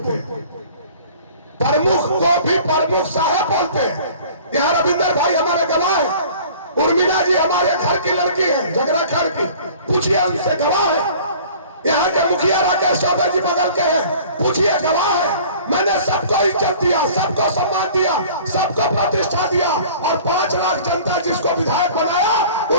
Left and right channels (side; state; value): both; inverted; correlation -0.47